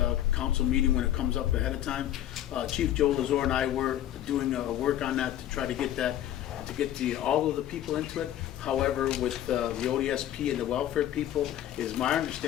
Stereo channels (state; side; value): quieter; right; 12.0 dB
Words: council meeting when it comes up ahead of time. Chief Joe Lazor and I were doing work on that to try to get all of the people into it. However, with the ODSP and the welfare people, is my